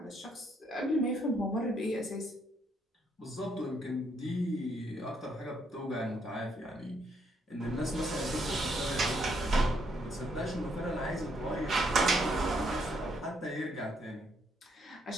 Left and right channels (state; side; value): normal; both; correlation 0.72